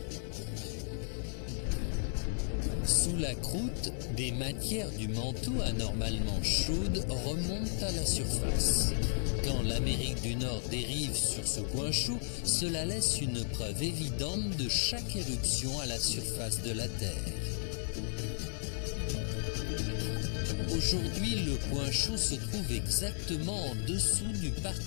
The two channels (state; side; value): silent; right; digital silence